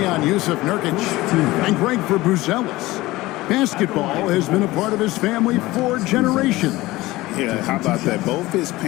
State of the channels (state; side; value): quieter; right; 18.9 dB